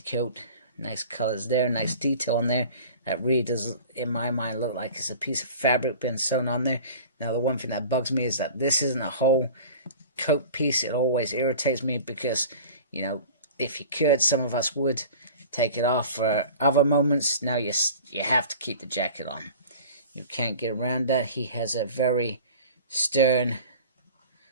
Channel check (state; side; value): inverted; both; correlation -0.41